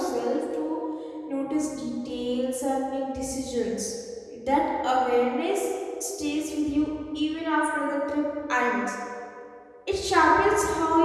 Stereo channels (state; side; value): identical; both; correlation 1.00